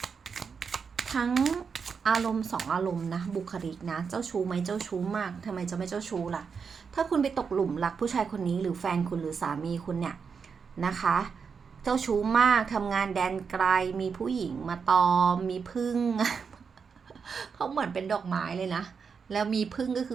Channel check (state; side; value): quieter; left; 5.9 dB